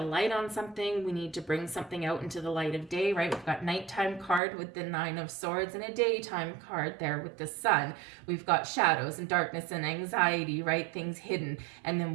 light on something. We need to bring something out into the light of day, right? We've got nighttime card with the Nine of Swords, and a daytime card there with the Sun. We've got shadows and darkness and anxiety, right? Things hidden. And then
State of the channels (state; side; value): drops out; left; at 4.4 s